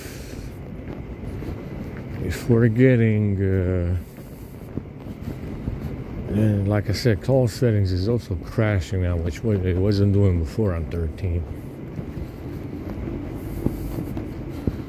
if we're getting, and like I said, call settings is also crashing now, which it wasn't doing before on 13.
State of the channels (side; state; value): both; identical; correlation 1.00